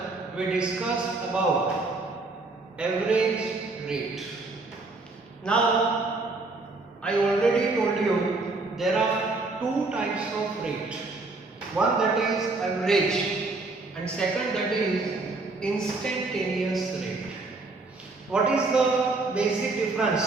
we discussed about average rate. Now I already told you there are two types of rate. One that is average and second that is instantaneous rate. What is the basic difference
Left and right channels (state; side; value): quieter; left; 3.4 dB